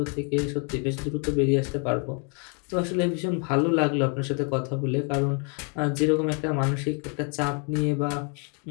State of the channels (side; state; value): right; quieter; 37.8 dB